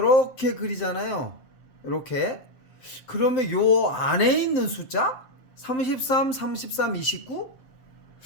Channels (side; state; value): right; late; 7.8 ms